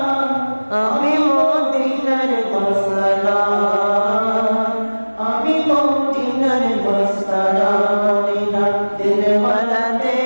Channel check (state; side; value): inverted; both; correlation -1.00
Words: আমি মদিনার মাস্তানা আমি মদিনার মাস্তানা মদিনা